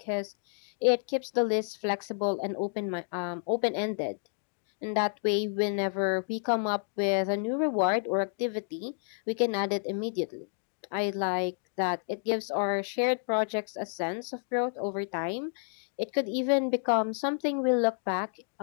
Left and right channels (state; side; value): silent; right; digital silence